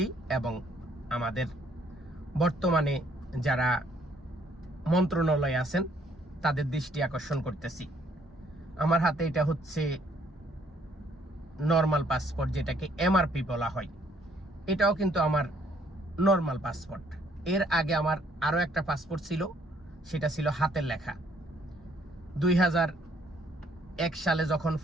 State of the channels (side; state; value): both; normal; correlation 0.65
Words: এবং আমাদের বর্তমানে যারা মন্ত্রণালয়ে আছেন তাদের দৃষ্টি আকর্ষণ করতেছি। আমার হাতে এটা হচ্ছে নর্মাল পাসপোর্ট, যেটাকে এমআরপি বলা হয়। এটাও কিন্তু আমার নর্মাল পাসপোর্ট। এর আগে আমার আরও একটা পাসপোর্ট ছিল, সেটা ছিল হাতের লেখা। 2001 সালে যখন